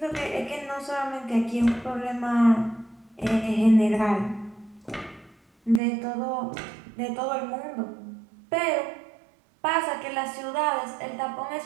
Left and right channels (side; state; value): left; drops out; at 5.8 s